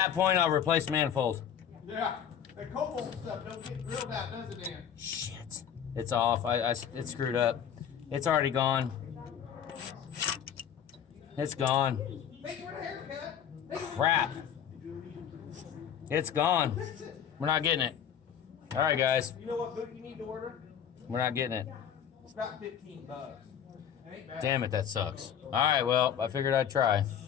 point, I'll replace manifold. Yeah. That cobalt stuff don't get drilled out, does it, Dan? Shit. It's off. It's screwed up. It's already gone. It's gone. Thank you for the haircut. Crap. It's gone. We're not getting it. All right, guys. You know what boot you need to order? We're not getting it. It's about $15. It ain't bad. Damn it, that sucks. All right, well, I figured I'd try.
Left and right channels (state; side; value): quieter; right; 8.9 dB